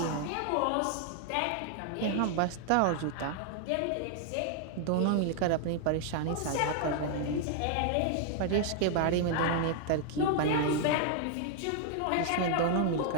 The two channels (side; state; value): both; different; correlation 0.00